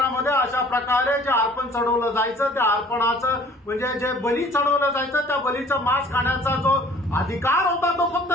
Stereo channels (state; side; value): normal; both; correlation 0.51